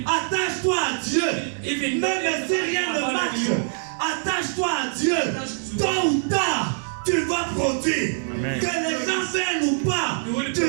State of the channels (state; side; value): silent; left; digital silence